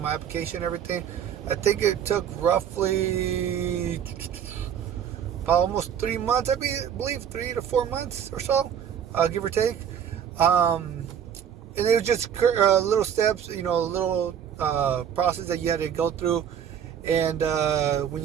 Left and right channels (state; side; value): quieter; left; 8.8 dB